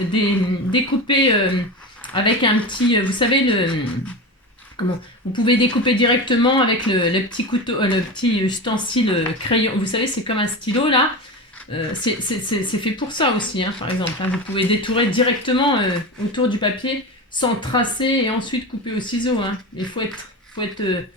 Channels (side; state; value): both; normal; correlation 0.24